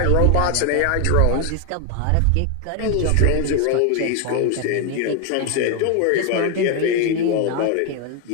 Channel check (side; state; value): both; different; correlation 0.01